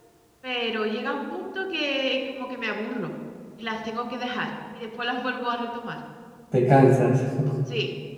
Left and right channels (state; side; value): identical; both; correlation 1.00